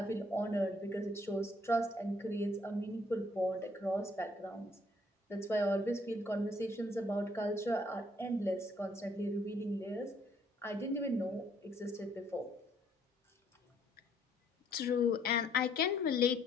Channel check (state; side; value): normal; both; correlation 0.66